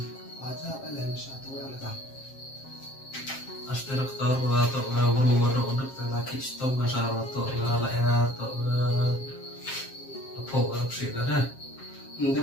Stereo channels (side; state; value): right; late; 7.5 ms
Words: aja em besar tu yang letak. Asli dokter atau berumur untuk laki stop masalah atau ya atau apa sih kan? Dia